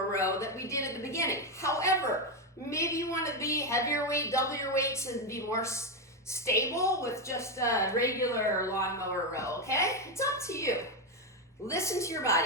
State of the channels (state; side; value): normal; both; correlation 0.07